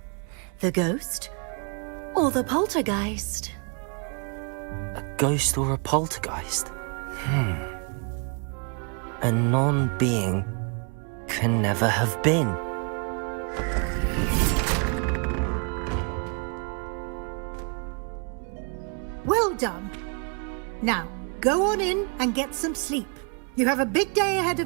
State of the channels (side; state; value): left; quieter; 36.4 dB